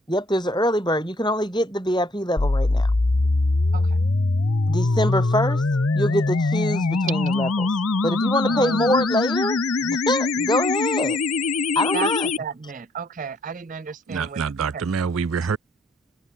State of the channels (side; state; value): both; normal; correlation 0.68